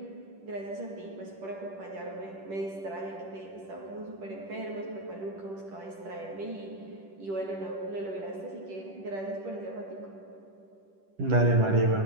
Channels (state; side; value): late; left; 10 ms